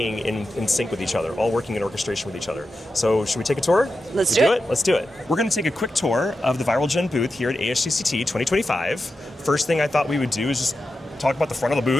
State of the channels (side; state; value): both; normal; correlation 0.90